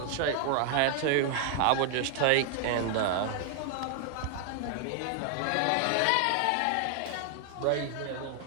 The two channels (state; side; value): different; both; correlation 0.00